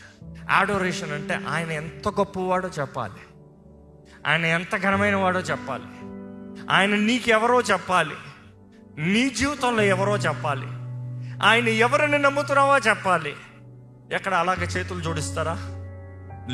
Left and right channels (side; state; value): both; identical; correlation 1.00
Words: అడోరేషన్ అంటే ఆయన ఎంత గొప్పవాడో చెప్పాలి, ఆయన ఎంత ఘనమైన వాడో చెప్పాలి, ఆయన నీకెవరో చెప్పాలి, నీ జీవితంలో ఎవరో చెప్పాలి, ఆయన ఎవరిని నమ్ముతున్నావో చెప్పాలి. ఎక్కడ అలాగే చేతులు జోడిస్తారా,